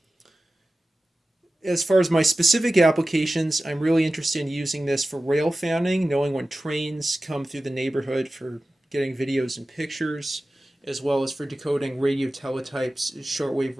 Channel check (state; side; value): normal; both; correlation 0.95